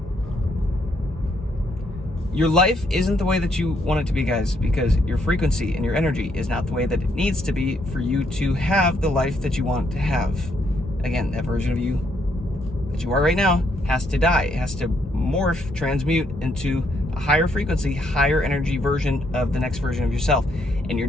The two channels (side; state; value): both; normal; correlation 0.73